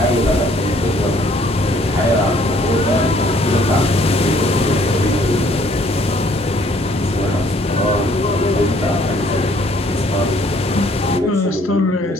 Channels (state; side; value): normal; both; correlation 0.61